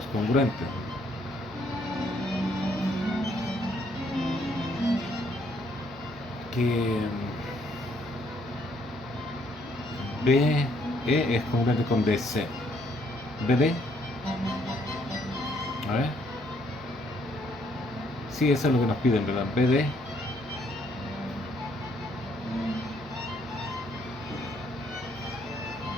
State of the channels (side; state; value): both; normal; correlation 0.68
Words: congruentes. Que BE es congruente con DC. BD, a ver, sí, eso es lo que nos piden, ¿verdad? BD